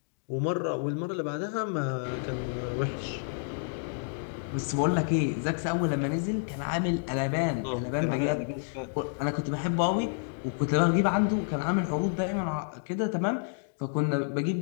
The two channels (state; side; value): silent; right; digital silence